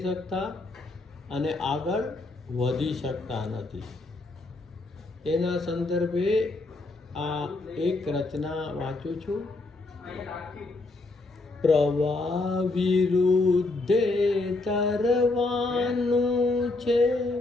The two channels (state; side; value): quieter; right; 3.2 dB